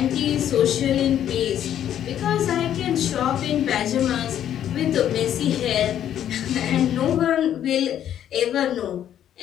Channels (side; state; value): right; quieter; 10.5 dB